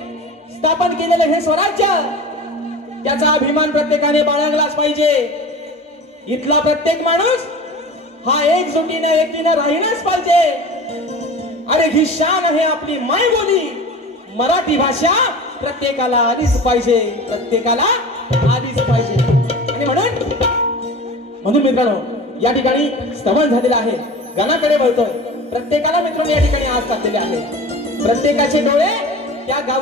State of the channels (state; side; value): normal; both; correlation 0.36